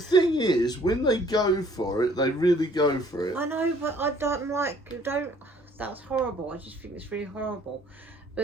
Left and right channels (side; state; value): both; normal; correlation 0.59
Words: thing is, when they go for it, they really go for it. I know, but I don't like. That's horrible. I just think it's really horrible. But